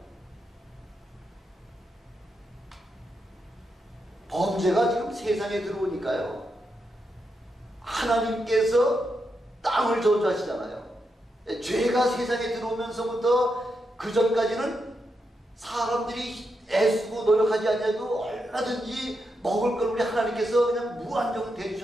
범죄가 지금 세상에 들어오니까요, 하나님께서 땅을 저주하시잖아요. 죄가 세상에 들어오면서부터 그 전까지는 사람들이 애쓰고 노력하지 않아도 얼마든지 먹을 걸 우리 하나님께서 그냥 무한정을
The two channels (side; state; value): both; normal; correlation 0.84